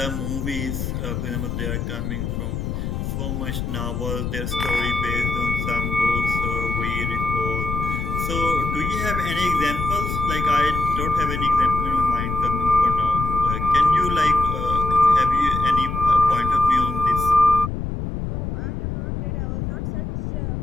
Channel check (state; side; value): noise; left; rumble, 3 dB below the sound